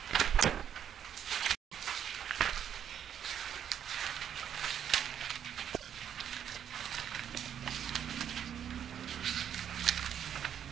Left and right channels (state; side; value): quieter; left; 9.1 dB